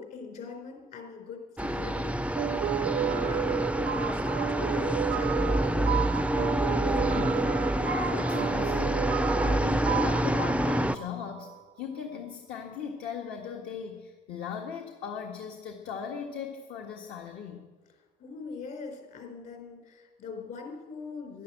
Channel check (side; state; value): both; normal; correlation 0.70